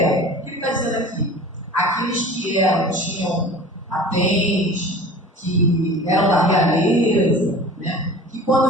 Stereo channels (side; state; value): both; normal; correlation 0.40